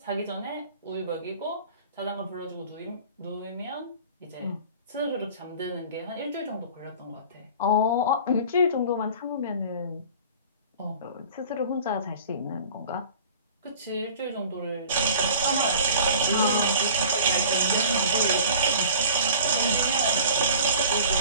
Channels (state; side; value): inverted; both; correlation -0.44